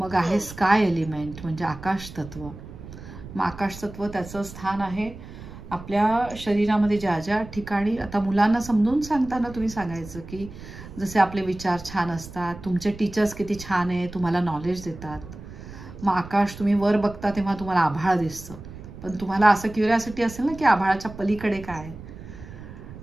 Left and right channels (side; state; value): right; noise; rumble, 14 dB below the sound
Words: आहे स्काय एलिमेंट म्हणजे आकाश तत्व. मग आकाश तत्व त्याचं स्थान आहे आपल्या शरीरामध्ये ज्या ज्या ठिकाणी. आता मुलांना समजून सांगताना तुम्ही सांगायचं की जसे आपले विचार छान असतात, तुमचे टीचर्स किती छान आहे, तुम्हाला नॉलेज देतात. मग आकाश तुम्ही वर बघता तेव्हा तुम्हाला आभाळ दिसतं, पण तुम्हाला असं क्युरिओसिटी असेल ना की आभाळाच्या पलीकडे काय आहे,